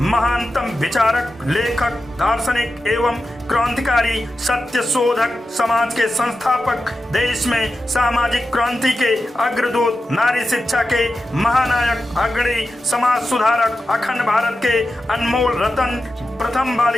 महानतम विचारक, लेखक, दार्शनिक एवं क्रांतिकारी, सत्य शोधक, समाज के संस्थापक, देश में सामाजिक क्रांति के अग्रदूत, नारी शिक्षा के महानायक, अग्रणी समाज सुधारक, अखंड भारत के अनमोल रतन, प्रथम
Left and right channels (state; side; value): normal; both; correlation 0.92